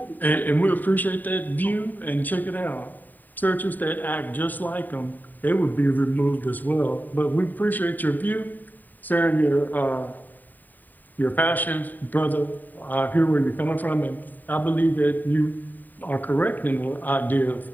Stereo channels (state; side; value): late; right; 0.087 ms